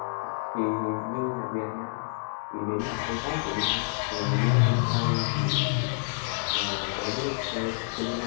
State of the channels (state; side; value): silent; right; digital silence